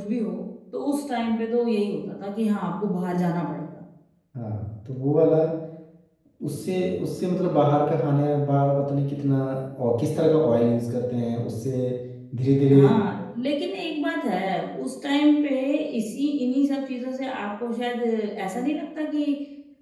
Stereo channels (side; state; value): both; identical; correlation 1.00